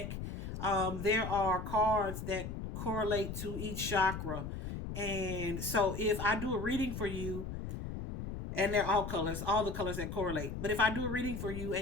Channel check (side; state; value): left; noise; rumble, 6 dB below the sound